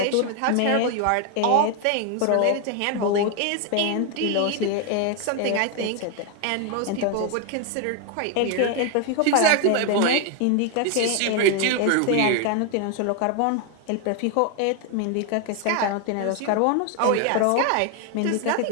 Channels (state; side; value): different; both; correlation 0.01